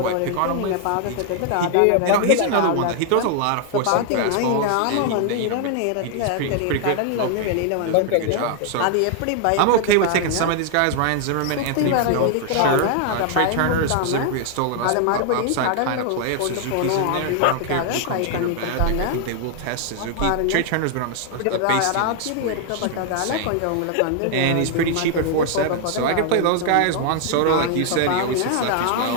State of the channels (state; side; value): different; both; correlation 0.00